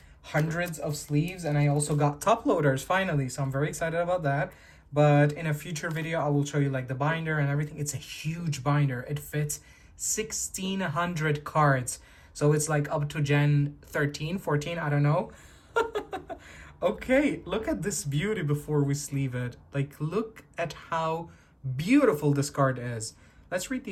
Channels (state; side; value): identical; both; correlation 1.00